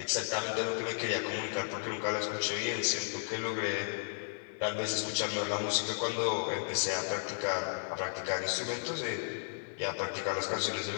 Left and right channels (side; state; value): right; silent; 55 dB below the other